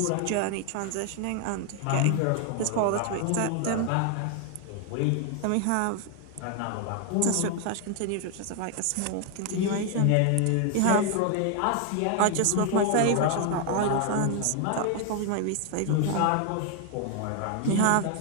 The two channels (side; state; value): both; different; correlation 0.00